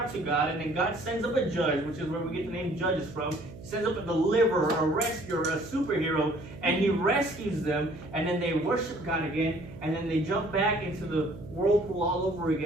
to God, and then God sends up a judge, which is where we get the name Judges from. He sends up a deliverer, a rescuer, a superhero, and he rescues them, and then they worship God again, and then they jump back into the whirlpool all over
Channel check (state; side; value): noise; right; hum, 15 dB below the sound